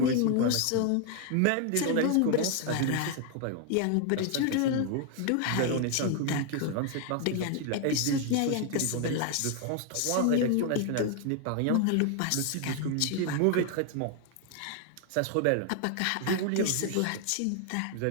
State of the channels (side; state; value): both; different; correlation 0.00